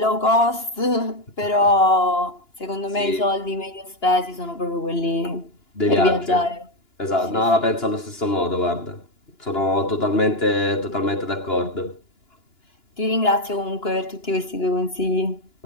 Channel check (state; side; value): late; right; 2.9 ms